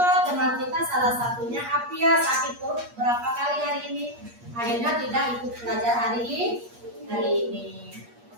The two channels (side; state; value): left; late; 8.4 ms